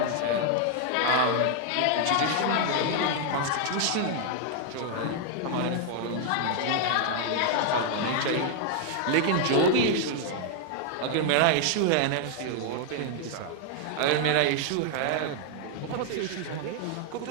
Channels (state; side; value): different; both; correlation 0.00